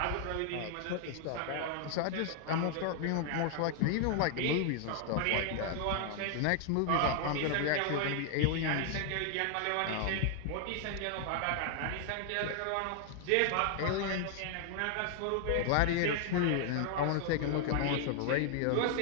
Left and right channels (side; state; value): both; different; correlation 0.00